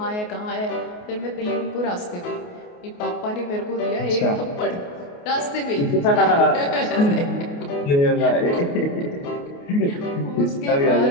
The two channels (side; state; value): right; late; 28 ms